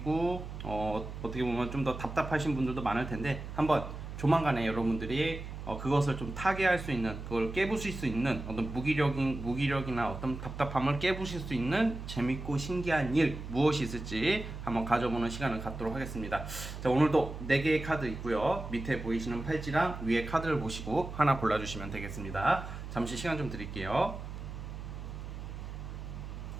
어떻게 보면 좀 더 답답하신 분들도 많을 텐데, 한번 조만간에 여러분들이 그것을 좀 타개할 수 있는, 그걸 깨부실 수 있는 어떤 무기력이나 어떤 답답함을 깨부실 수 있는 재밌고 신기한 일 무엇이 있을지 한번 가져보는 시간을 갖도록 하겠습니다. 자, 오늘도 4개의 카드 있고요. 밑에 보이시는 팔찌랑 위에 카드를 보시고 하나 골라주시면 되겠습니다. 잠시 시간 좀 드릴게요.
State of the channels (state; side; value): noise; right; hum, 9 dB below the sound